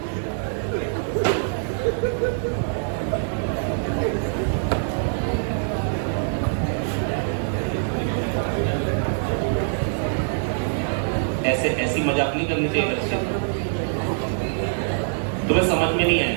ऐसे ऐसी मजाक नहीं करनी चाहिए बच्चे, तुम्हें समझ में नहीं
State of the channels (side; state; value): left; silent; digital silence